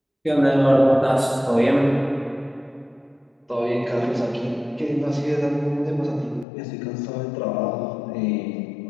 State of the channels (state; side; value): drops out; right; at 6.5 s